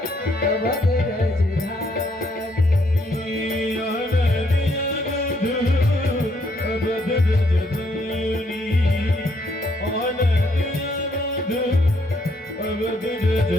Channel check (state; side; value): normal; both; correlation 0.71